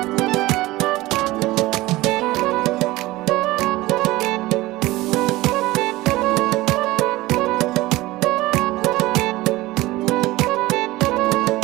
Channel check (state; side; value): quieter; left; 18.8 dB